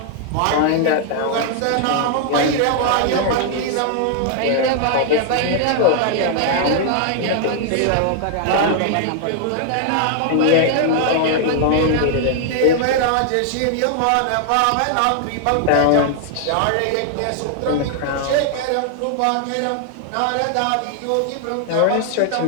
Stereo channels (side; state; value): both; different; correlation 0.00